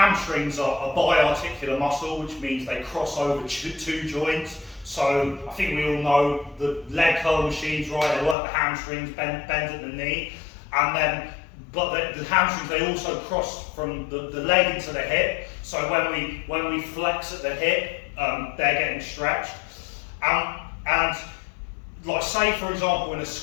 are a biarticular muscle, which means they cross over two joints. So I think we all know the leg curl machines, right? They work the hamstrings, bend at the knee, and then the hamstrings, they also cross from the leg into the hip. So when we flex at the hip, they're getting stretched. And like say for example in a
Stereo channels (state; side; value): drops out; right; at 8.3 s